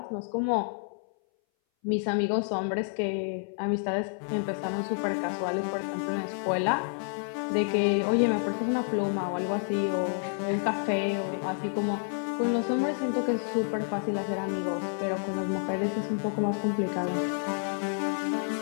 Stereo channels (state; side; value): silent; right; 58 dB below the other